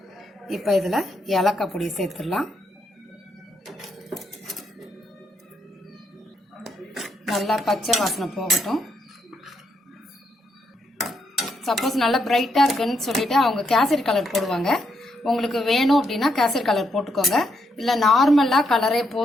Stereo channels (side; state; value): both; normal; correlation 0.78